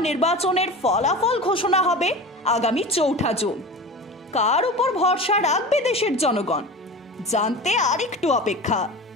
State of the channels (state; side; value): normal; both; correlation 0.32